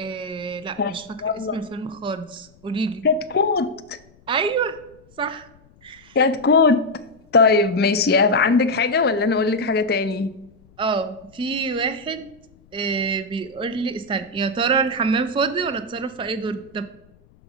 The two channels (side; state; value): left; noise; rumble, 29 dB below the sound